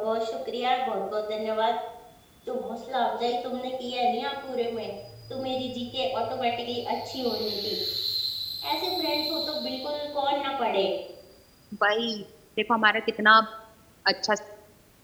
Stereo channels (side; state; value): both; identical; correlation 1.00